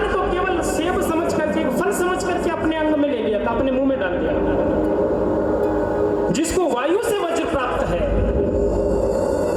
को केवल सेब समझ करके, फल समझ करके अपने अंग में ले लिया था, अपने मुंह में डाल दिया, जिसको वायु से वज्र प्राप्त है,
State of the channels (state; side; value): identical; both; correlation 1.00